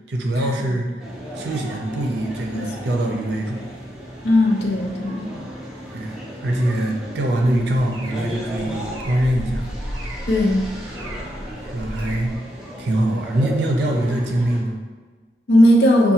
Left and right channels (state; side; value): normal; both; correlation 0.83